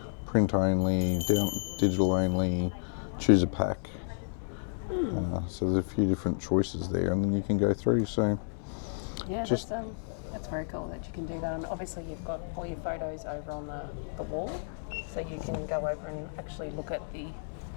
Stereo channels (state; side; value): silent; right; digital silence